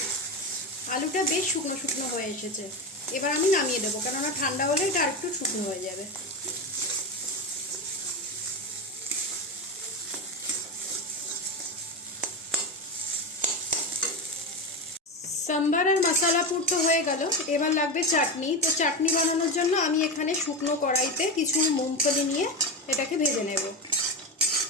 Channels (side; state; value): both; normal; correlation 0.18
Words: আলুটা বেশ শুকনো শুকনো হয়ে এসেছে, এবার আমি নামিয়ে দেবো, কেননা ঠান্ডা হলে এটা আর একটু শুকনো হয়ে যাবে। সাম্বার আর মশলা পুর তো হয়ে গেল, এবার লাগবে চাটনি। তো চাটনি বানানোর জন্য আমি এখানে শুকনো কড়াইতে কিছু মুংফলি নিয়ে এটাকে ভেজে নেব।